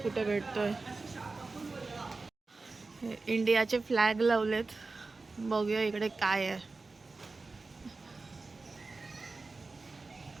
कुठे भेटतोय. हे इंडियाचे फ्लॅग लावलेत, बघूया इकडे काय आहे.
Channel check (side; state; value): left; quieter; 3.8 dB